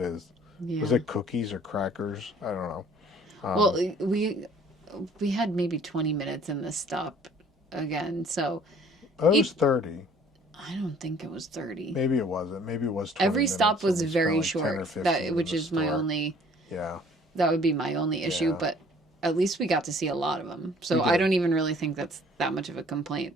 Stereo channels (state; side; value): normal; both; correlation 0.55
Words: Yeah. Was it cookies or crackers? I don't know. Well, we had maybe 20 minutes in this stop again, so It was 30. I don't think it was 30. Maybe it wasn't. Maybe it was 20 Every stop minutes, was and we spent very like 10 or short. 15 Which in the is my store. only. Yeah. That would be my only issue, Yeah. but at least we got to see a lot of them. So We I did. don't even really think that's that much of a complaint.